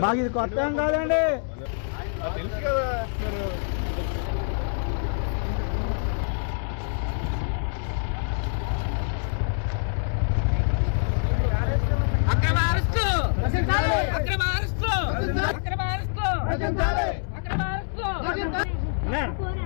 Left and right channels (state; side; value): silent; right; 61 dB below the other